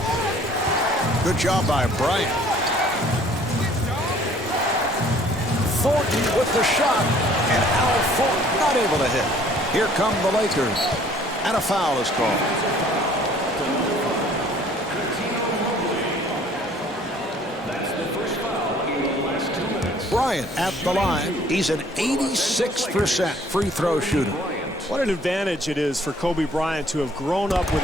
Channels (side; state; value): both; normal; correlation 0.57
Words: Good job by Bryant. Thornton with the shot, and Al Thornton not able to hit. Here come the Lakers, and a foul is called. That's the first foul in the last 2 minutes. Bryant at the line. He's an 86% free throw shooter. What an advantage it is for Kobe Bryant to have grown up with